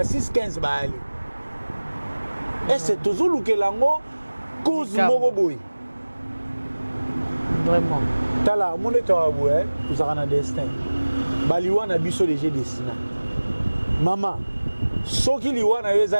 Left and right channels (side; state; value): both; inverted; correlation -1.00